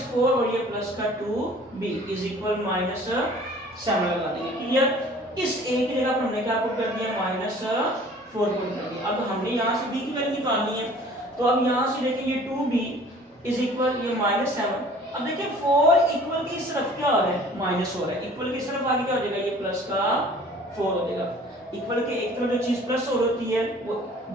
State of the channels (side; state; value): both; normal; correlation 0.49